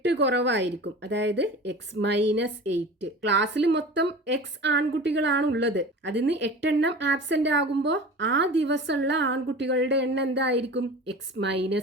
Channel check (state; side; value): normal; both; correlation 0.36